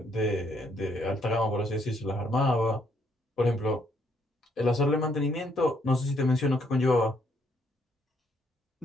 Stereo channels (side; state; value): both; normal; correlation 0.71